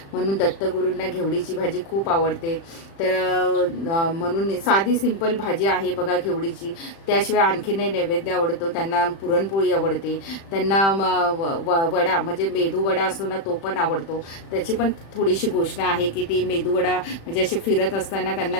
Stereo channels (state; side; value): late; right; 36 ms